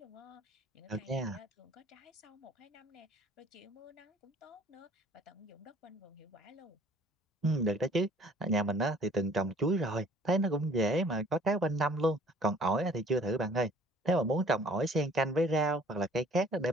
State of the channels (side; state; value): both; normal; correlation 0.54